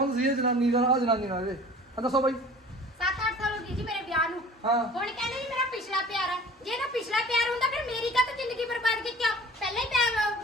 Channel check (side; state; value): both; normal; correlation 0.45